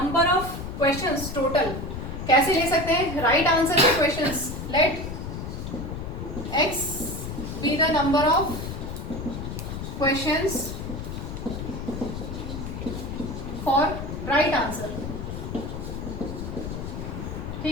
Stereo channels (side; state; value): left; noise; rumble, 6 dB below the sound